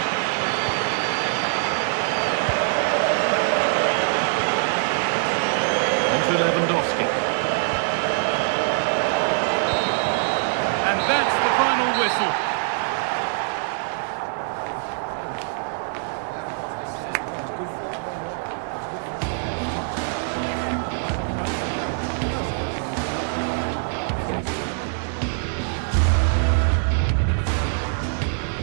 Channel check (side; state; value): left; silent; 55 dB below the other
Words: To Lewandowski. And that's the final whistle.